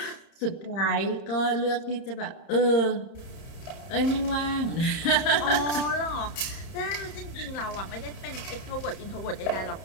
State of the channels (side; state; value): right; late; 31 ms